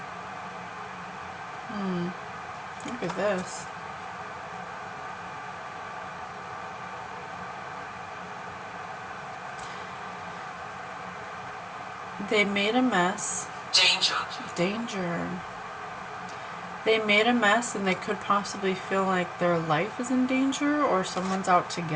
Look at this. They made a mess. Danger. They made a mess, and they could possibly feel like their life is in danger, or someone's out to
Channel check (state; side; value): identical; both; correlation 1.00